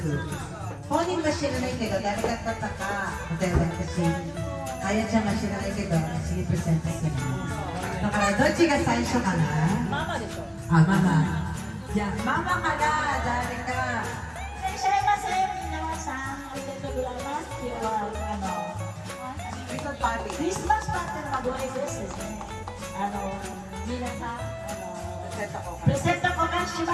Honing ba siya na ikaw, dahil katataka, dahil kasi kaya siya nga siya na ikaw, sige present sa siya. Nakaraan, doon siya saisho ka na? Mama dito. Ah, mama. Yeah, mama ka na, dahil ka. いらっしゃいませ、皆さん。ありがとうございます。今日はクリスマスパーティーのご挨拶ですね。皆さんプレゼント交換し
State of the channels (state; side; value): identical; both; correlation 1.00